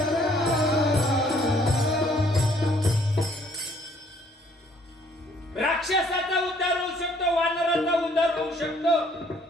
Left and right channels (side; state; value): both; normal; correlation 0.62